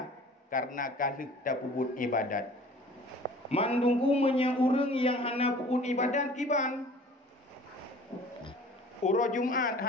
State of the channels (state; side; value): normal; both; correlation 0.47